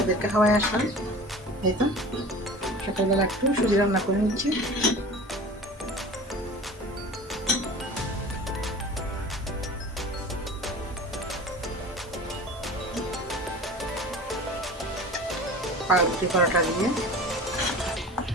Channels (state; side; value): normal; both; correlation 0.38